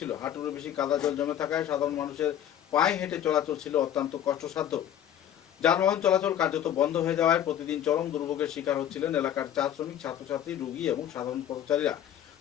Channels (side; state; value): right; quieter; 10.5 dB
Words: হাঁটুর বেশি কাদা জল জমে থাকায় সাধারণ মানুষের পায়ে হেঁটে চলাচল ছিল অত্যন্ত কষ্টসাধ্য। যানবাহন চলাচল কার্যত বন্ধ হয়ে যাওয়ায় প্রতিদিন চরম দুর্ভোগের শিকার হচ্ছিলেন এলাকার চা শ্রমিক, ছাত্রছাত্রী, রোগী এবং সাধারণ পথচারীরা।